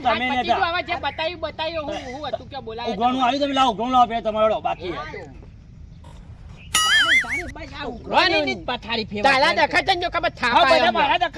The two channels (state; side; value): identical; both; correlation 1.00